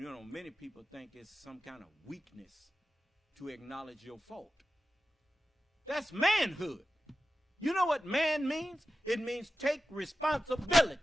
many people think it's some kind of weakness to acknowledge your fault. That's manhood. You know what man means? It means take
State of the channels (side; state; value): both; normal; correlation 0.93